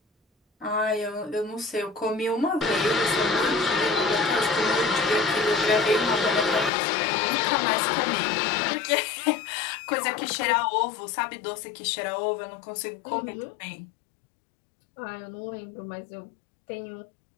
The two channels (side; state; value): right; drops out; at 6.7 s